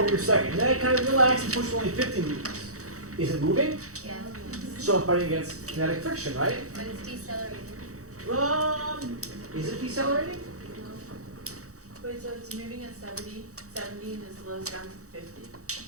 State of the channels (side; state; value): left; late; 0.65 ms